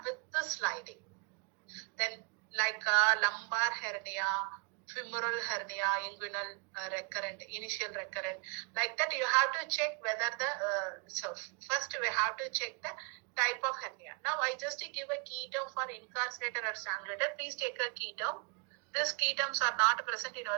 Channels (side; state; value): left; quieter; 33.8 dB